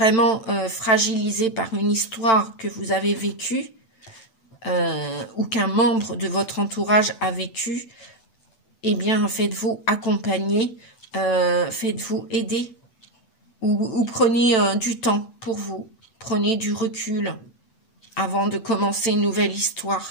fragilisé par une histoire que vous avez vécue ou qu'un membre de votre entourage a vécu, eh bien, faites-vous accompagner, faites-vous aider ou prenez du temps pour vous, prenez du recul avant de commencer une nouvelle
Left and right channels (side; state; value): right; late; 8.0 ms